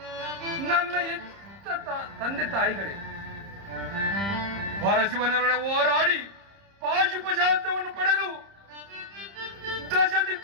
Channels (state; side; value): late; left; 30 ms